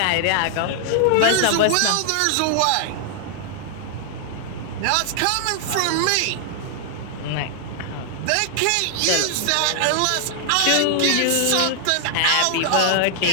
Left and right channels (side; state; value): both; different; correlation -0.01